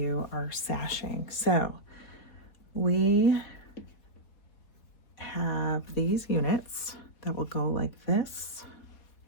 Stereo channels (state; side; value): late; right; 4.2 ms